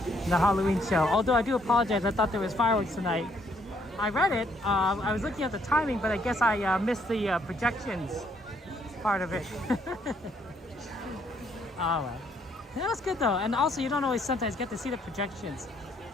The Halloween show. Although I do apologize, I thought there was fireworks tonight. I read it. I was looking at the timing, but I guess I missed the projections part of it. All right. That was good though, and also you don't always sometimes get to see the projections.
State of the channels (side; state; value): both; normal; correlation 0.68